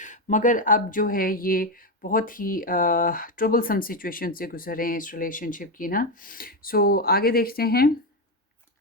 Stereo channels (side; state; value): both; normal; correlation 0.09